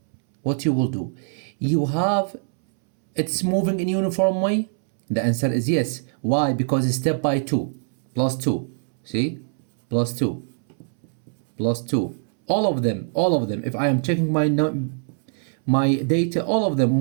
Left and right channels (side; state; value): left; silent; 63 dB below the other